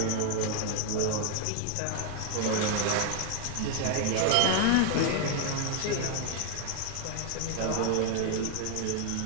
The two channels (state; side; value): different; both; correlation 0.00